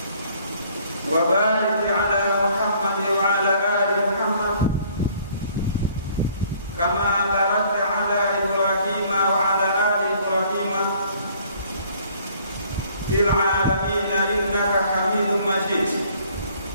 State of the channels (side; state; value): both; inverted; correlation -0.59